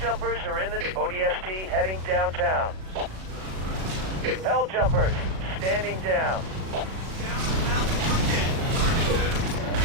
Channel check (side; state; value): left; late; 37 ms